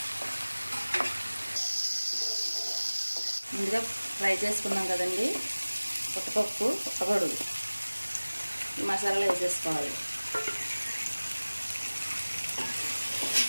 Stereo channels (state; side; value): inverted; both; correlation -1.00